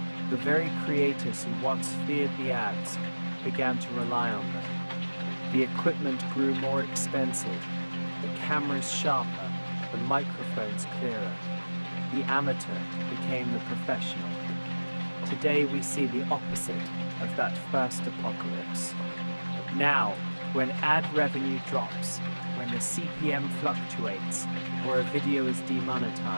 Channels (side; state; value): both; inverted; correlation -1.00